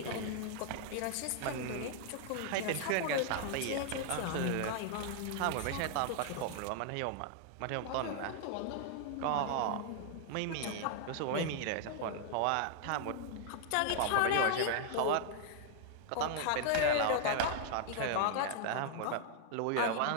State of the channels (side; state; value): both; different; correlation 0.00